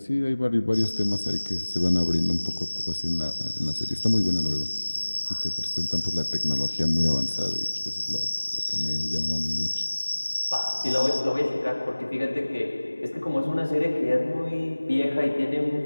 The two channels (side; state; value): both; inverted; correlation -1.00